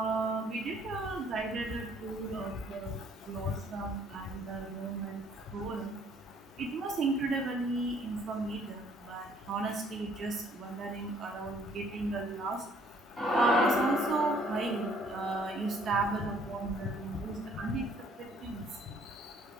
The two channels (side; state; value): both; normal; correlation 0.61